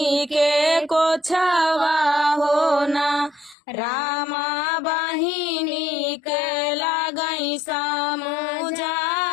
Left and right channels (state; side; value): drops out; right; at 3.6 s